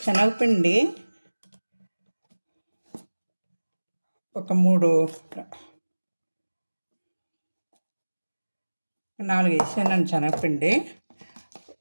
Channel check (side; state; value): both; inverted; correlation -1.00